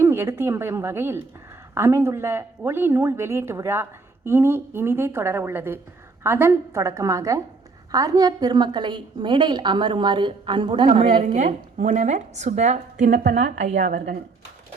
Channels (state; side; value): quieter; left; 4.0 dB